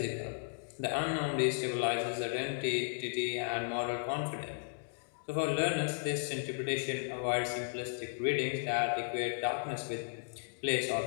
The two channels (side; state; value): right; silent; digital silence